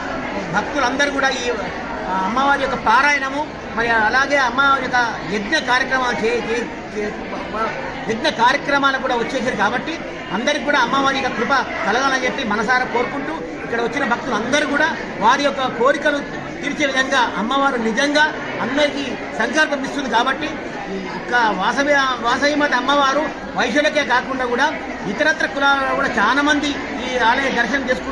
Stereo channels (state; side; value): identical; both; correlation 1.00